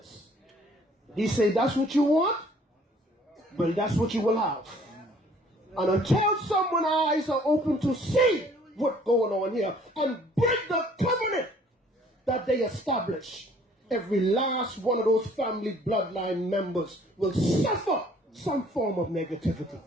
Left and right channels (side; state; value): both; normal; correlation 0.57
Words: He said, that's what you want? Well, that's what you will have. And until someone's eyes are open to see what's going on here and break the covenant that they establish, every last one of those family bloodline members will suffer some form of negativity.